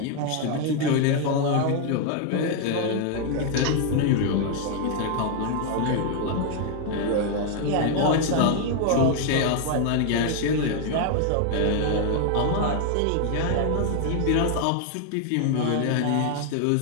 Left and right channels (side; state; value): both; different; correlation 0.00